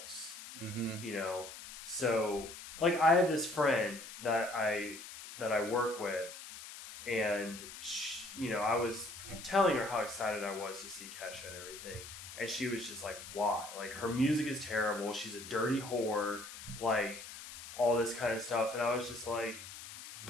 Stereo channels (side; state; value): left; noise; hiss, 12 dB below the sound